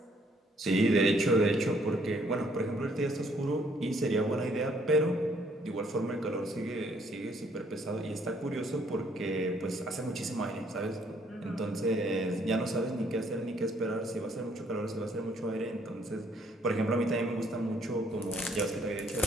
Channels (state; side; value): normal; both; correlation 0.66